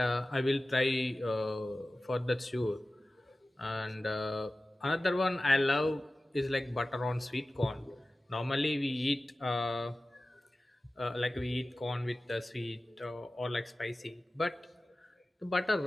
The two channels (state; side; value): normal; both; correlation 0.96